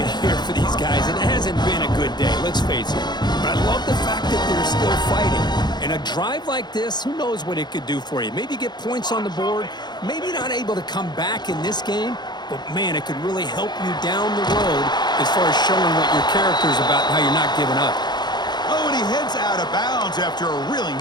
here for these guys. It hasn't been a good day, let's face it. But I love the fact that they're still fighting. And a drive like this, who knows what it could do for you. Maybe get points on the board, maybe not able to come back in this game, but man, it could really help you down the road as far as showing what your character's about and how you're not giving up. Oh, and he heads out of bounds after a really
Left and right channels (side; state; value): right; late; 0.21 ms